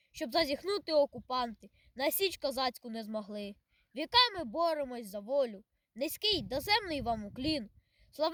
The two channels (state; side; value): identical; both; correlation 1.00